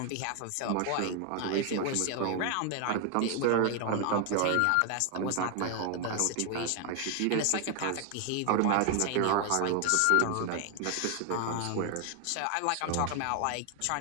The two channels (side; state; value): both; different; correlation 0.00